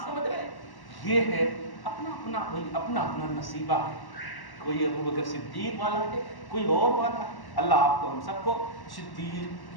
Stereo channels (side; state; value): right; late; 1.1 ms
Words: سمجھ رہے ہیں, یہ ہے اپنا اپنا نصیبہ ہے. کوئی ابو بکر صدیق والا ہے, کوئی اور والا ہے. اللہ آپ کو ہم سب کو صدیق